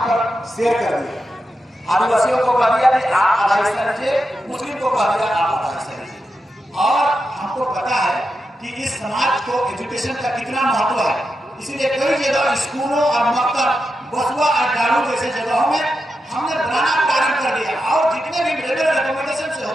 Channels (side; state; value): both; normal; correlation 0.88